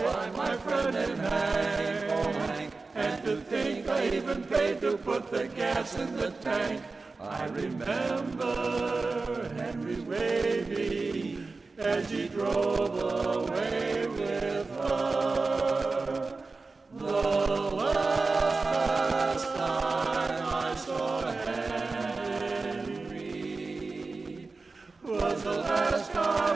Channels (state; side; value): quieter; left; 3.8 dB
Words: my friend and Hank, and to think I even paid to put the gas in the tank. I remember Henry waving as he drove away with her. The last time I saw Henry was the last